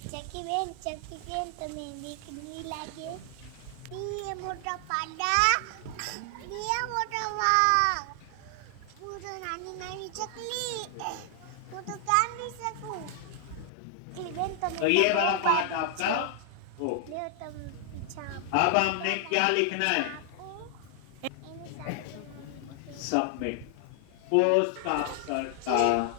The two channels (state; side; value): different; both; correlation 0.00